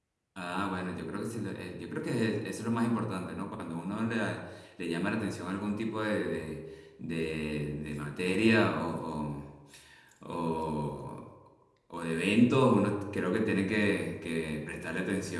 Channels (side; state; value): both; identical; correlation 1.00